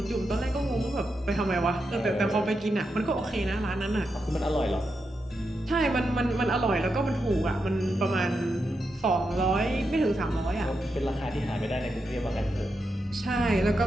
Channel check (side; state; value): both; normal; correlation 0.86